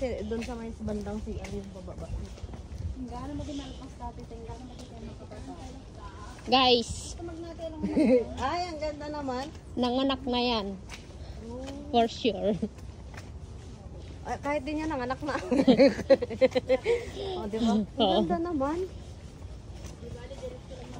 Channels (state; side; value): identical; both; correlation 1.00